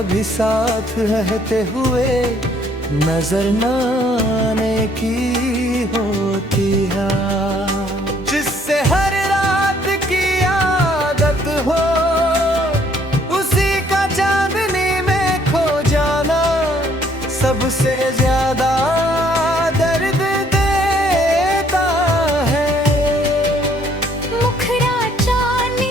साथ रहते हुए नजर न आने की होती है। जिससे हर रात की आदत हो उसी का चांदनी में खो जाना सबसे ज्यादा दर्द देता है। मुखड़ा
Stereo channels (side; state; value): both; normal; correlation 0.64